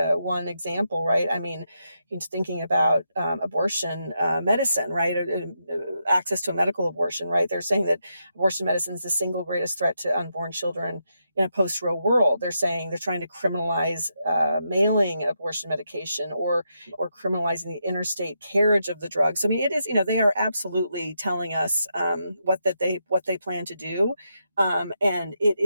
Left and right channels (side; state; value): both; inverted; correlation -0.82